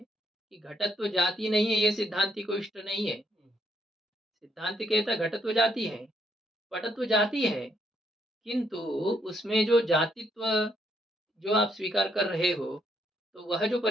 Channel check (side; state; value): both; normal; correlation 0.72